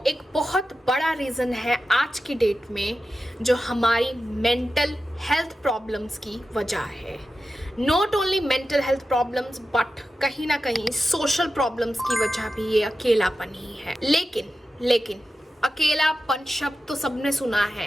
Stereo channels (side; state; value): both; normal; correlation 0.92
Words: एक बहुत बड़ा रीज़न है आज की डेट में, जो हमारी मेंटल हेल्थ प्रॉब्लम्स की वजह है। Not only mental health problems but कहीं ना कहीं सोशल प्रॉब्लम्स की वजह भी ये अकेलापन ही है। लेकिन अकेलापन शब्द तो सबने सुना